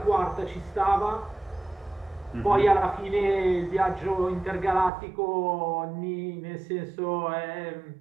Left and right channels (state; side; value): drops out; left; at 4.9 s